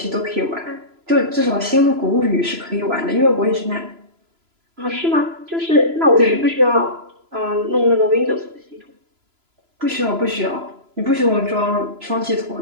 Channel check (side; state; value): left; late; 3.0 ms